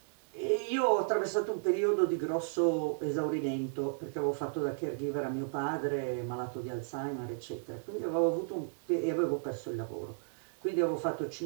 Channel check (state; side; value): silent; left; digital silence